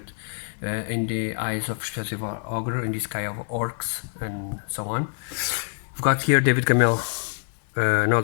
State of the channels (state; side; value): silent; right; 61 dB below the other